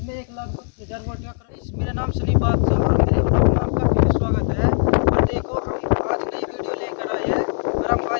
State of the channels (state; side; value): silent; right; 57 dB below the other